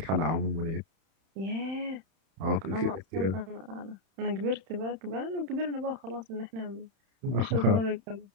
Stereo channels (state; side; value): late; left; 31 ms